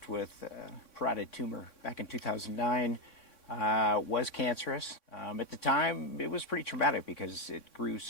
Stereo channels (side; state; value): right; late; 3.6 ms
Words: with parotid tumor back in 2009. Was cancerous. At the time, it was pretty traumatic because it grew